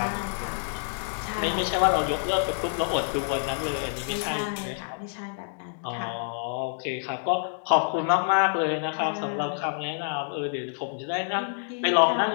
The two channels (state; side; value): silent; right; digital silence